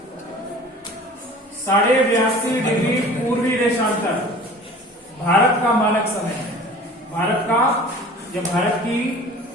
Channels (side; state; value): both; normal; correlation 0.43